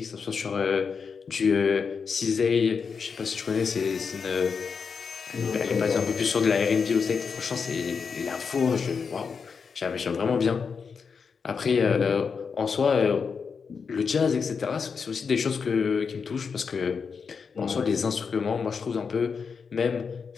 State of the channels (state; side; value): quieter; right; 5.7 dB